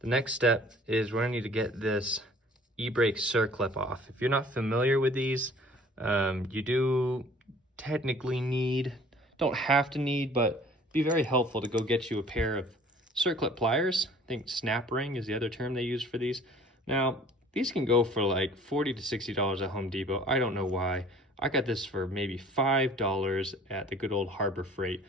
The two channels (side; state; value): both; normal; correlation 0.51